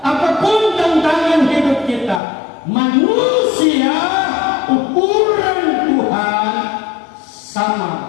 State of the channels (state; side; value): drops out; right; at 2.2 s